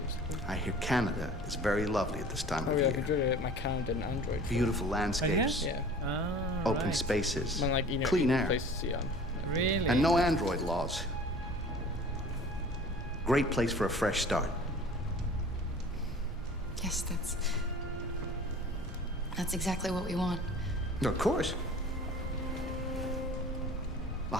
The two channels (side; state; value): both; normal; correlation 0.44